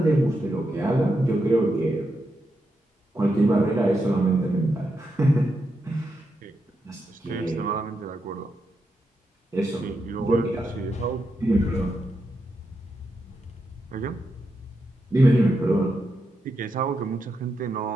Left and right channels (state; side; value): normal; both; correlation 0.84